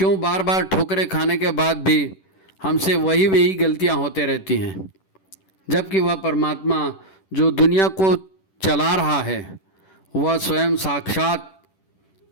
बार बार ठोकरें खाने के बाद भी हमसे वही गलतियां होते रहती हैं, जबकि वह परमात्मा जो दुनिया को चला रहा है वह स्वयं साक्षात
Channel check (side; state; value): right; late; 10 ms